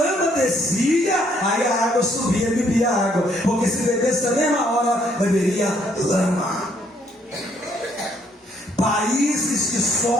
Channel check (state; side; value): normal; both; correlation 0.68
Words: descia, aí a água subia e bebia água. Porque se bebesse na mesma hora, beberia lama. Países que